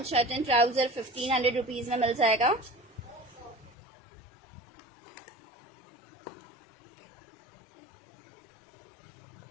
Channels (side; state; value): right; drops out; at 3.8 s